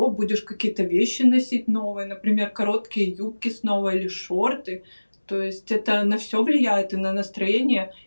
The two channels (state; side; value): inverted; both; correlation -1.00